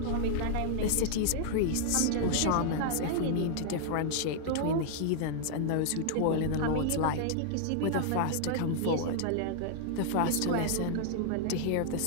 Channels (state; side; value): different; both; correlation -0.01